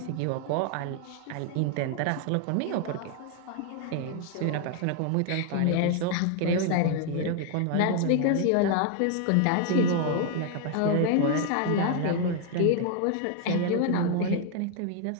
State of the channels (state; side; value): different; both; correlation 0.00